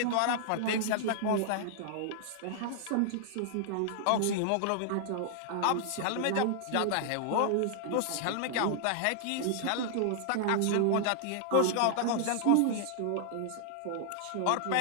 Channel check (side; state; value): both; different; correlation -0.01